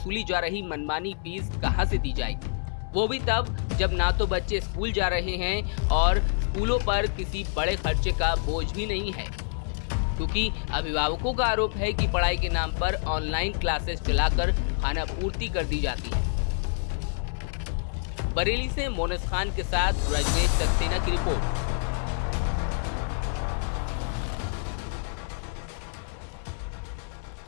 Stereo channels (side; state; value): right; silent; 60 dB below the other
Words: जा रही मनमानी फीस कहां से दी जाएगी, वो भी तब जब ना तो बच्चे स्कूल जा रहे हैं और स्कूलों पर किसी बड़े खर्चे का बोझ भी नहीं है। क्योंकि अभिभावकों का आरोप है कि पढ़ाई के नाम पर ऑनलाइन क्लासेस चलाकर खाना पूर्ति कर दी जाती है। बरेली से मोनस खान के साथ रजनीश सक्सेना की रिपोर्ट।